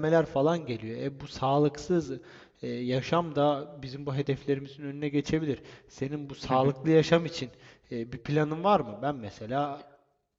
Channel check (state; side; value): identical; both; correlation 1.00